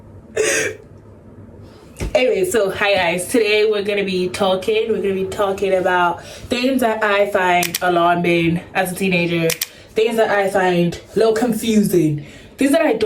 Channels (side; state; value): both; identical; correlation 1.00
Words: Anyway, so hi guys, today we're gonna be talking about things that I find alarming as a teenager, things that I find a little confusing, things that I